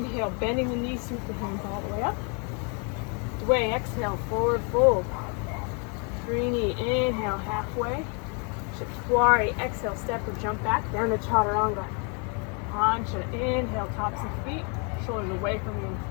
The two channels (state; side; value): quieter; right; 35.7 dB